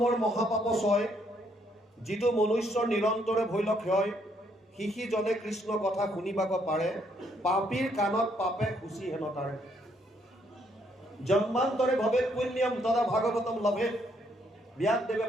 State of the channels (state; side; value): normal; both; correlation 0.71